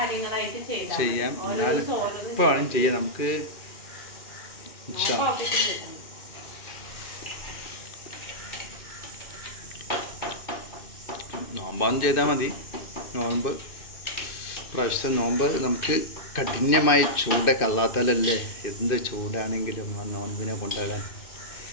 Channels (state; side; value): late; right; 2.6 ms